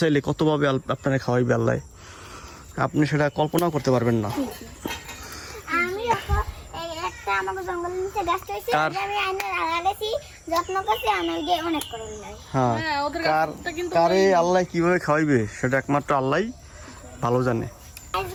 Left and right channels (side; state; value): both; identical; correlation 1.00